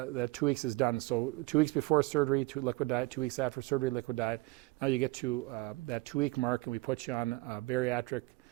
2 weeks is done, so 2 weeks before surgery, liquid diet, 2 weeks after surgery, liquid diet. Now you get to that 2 week mark, and we put you on bariatric.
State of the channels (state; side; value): quieter; left; 21.2 dB